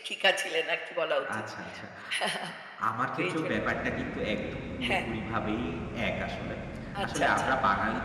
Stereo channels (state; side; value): identical; both; correlation 1.00